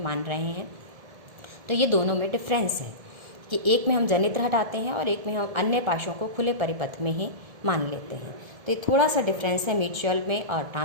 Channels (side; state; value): left; late; 1.7 ms